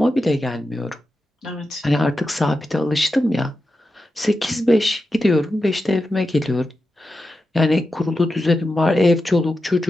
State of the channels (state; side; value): normal; both; correlation 0.90